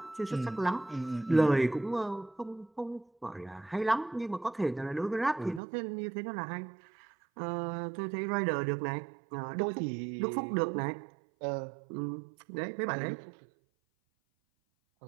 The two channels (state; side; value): drops out; left; at 5.6 s